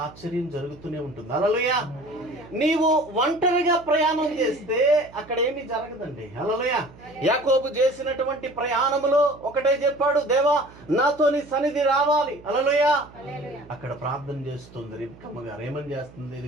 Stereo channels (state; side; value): noise; right; hum, 22 dB below the sound